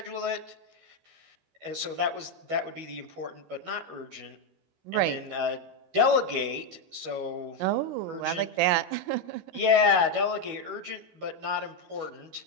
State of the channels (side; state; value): left; late; 12 ms